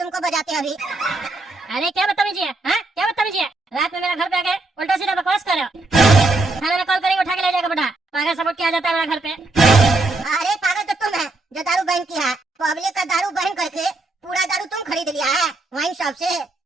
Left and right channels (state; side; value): quieter; left; 3.1 dB